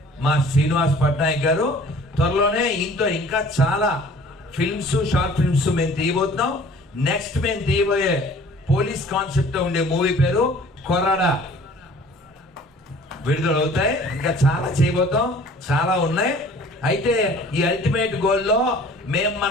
మా శ్రీనివాస్ పట్నాయక్ గారు. త్వరలోనే ఇంకా చాలా ఫిల్మ్స్, షార్ట్ ఫిల్మ్స్ మేము తీయబోతున్నాం. నెక్స్ట్ మేము తీయబోయే పోలీస్ కాన్సెప్ట్ ఉండే మూవీ పేరు కొరాడా విడుదలవుతాయి. ఇంకా చాలా చేయబోతాం, చాలా ఉన్నాయి. అయితే ఈ అల్టిమేట్ గోల్లో మేము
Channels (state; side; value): normal; both; correlation 0.50